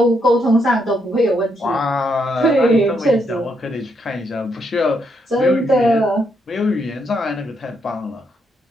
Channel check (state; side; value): normal; both; correlation 0.77